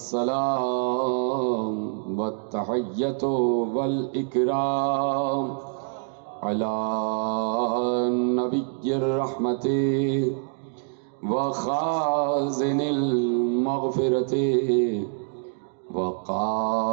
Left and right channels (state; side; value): silent; left; 61 dB below the other